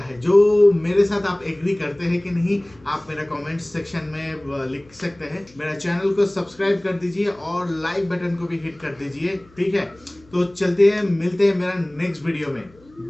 जो मेरे साथ आप एग्री करते हैं कि नहीं, आप मेरा कमेंट सेक्शन में लिख सकते हैं। मेरा चैनल को सब्सक्राइब कर दीजिए और लाइक बटन को भी हिट कर दीजिए, ठीक है। तो चलते हैं, मिलते हैं मेरा नेक्स्ट वीडियो में,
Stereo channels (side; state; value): left; noise; hum, 28 dB below the sound